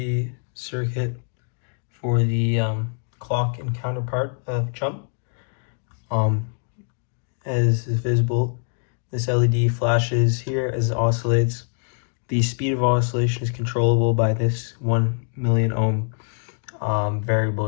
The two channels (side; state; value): right; silent; 57 dB below the other